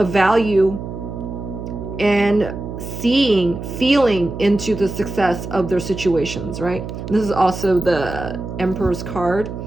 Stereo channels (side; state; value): right; noise; hum, 8 dB below the sound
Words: value, and feeling into the success of their situations, right? This is also the Emperor's card.